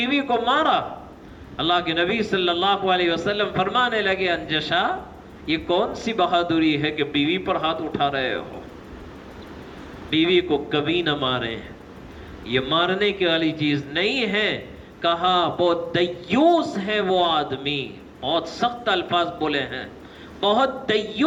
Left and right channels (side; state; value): both; identical; correlation 1.00